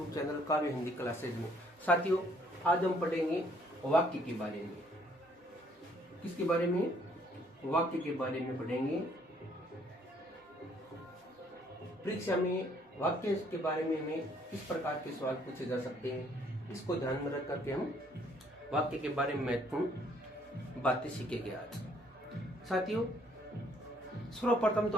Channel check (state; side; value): normal; both; correlation 0.64